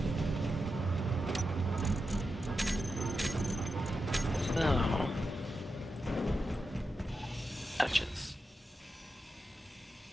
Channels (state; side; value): normal; both; correlation 0.89